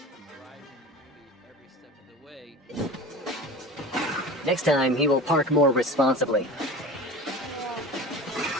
Next time, he will park more responsibly.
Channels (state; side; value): normal; both; correlation 0.35